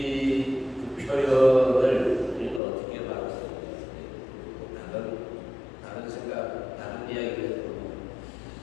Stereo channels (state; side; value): drops out; right; at 2.6 s